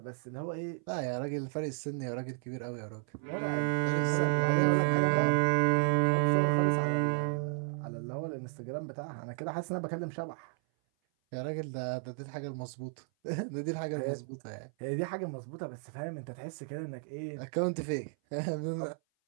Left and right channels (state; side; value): silent; left; 56 dB below the other